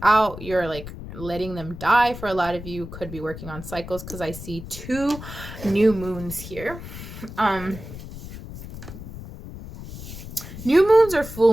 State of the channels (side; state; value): left; noise; rumble, 12 dB below the sound